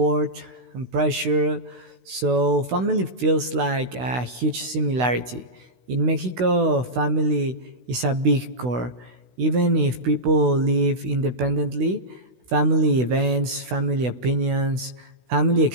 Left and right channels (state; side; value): late; left; 16 ms